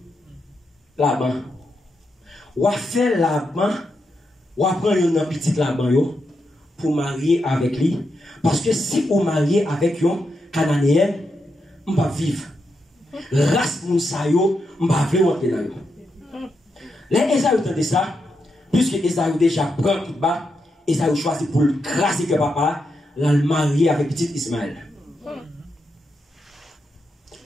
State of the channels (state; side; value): normal; both; correlation 0.84